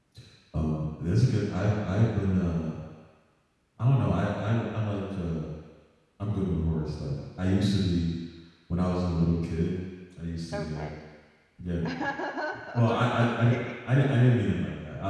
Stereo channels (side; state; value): both; identical; correlation 1.00